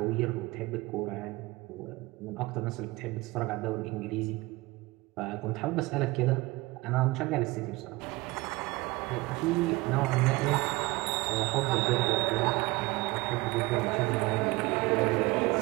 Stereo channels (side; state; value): left; quieter; 22.0 dB